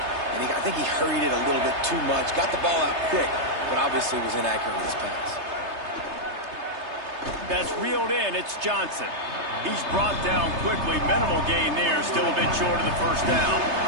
And I think he hurried it a little bit too much. Got the ball out quick, but obviously was inaccurate with his pass. That's reeled in. It's Johnson. He's brought down quickly. Minimal gain there. Still a bit short of the first down.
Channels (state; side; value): late; left; 3.3 ms